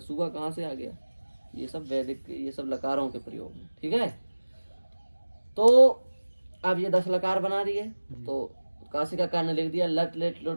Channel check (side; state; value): both; inverted; correlation -1.00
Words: कहाँ से आ गया? ये सब वैदिक, ये सब लकारों के प्रयोग हैं। ठीक है। तो अब ये 10 लकार बना दिए, तो काशिकाकार ने लिख दिया लट लेट